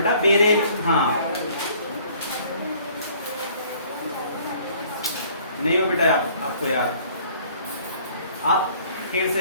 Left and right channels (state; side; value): inverted; both; correlation -0.56